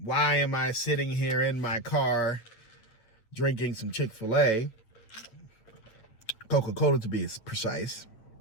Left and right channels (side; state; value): right; late; 8.9 ms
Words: am I sitting here in my car drinking some Chick-fil-A, Coca-Cola to be precise,